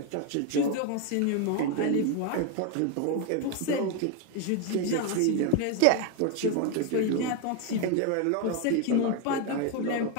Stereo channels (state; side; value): different; both; correlation 0.01